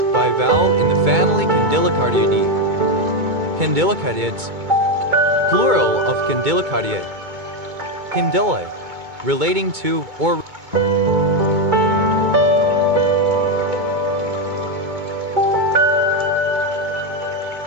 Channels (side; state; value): left; late; 2.2 ms